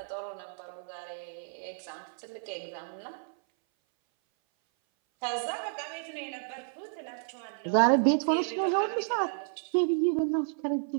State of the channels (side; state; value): left; silent; 57 dB below the other